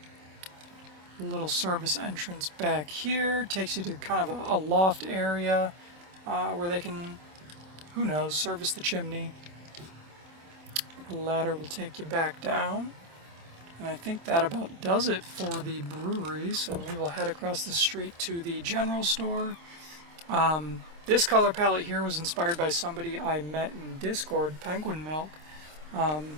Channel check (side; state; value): left; late; 26 ms